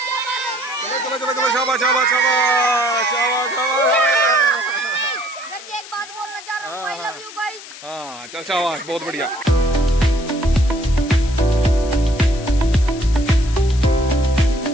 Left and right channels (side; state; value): left; noise; hiss, 16 dB below the sound